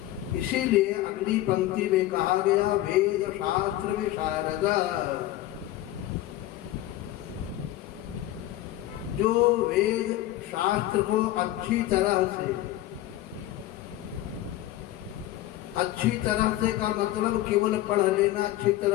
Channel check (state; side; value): quieter; right; 15.0 dB